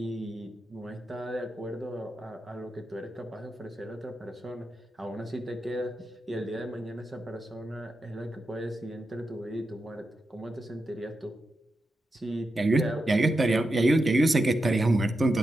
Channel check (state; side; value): normal; both; correlation 0.88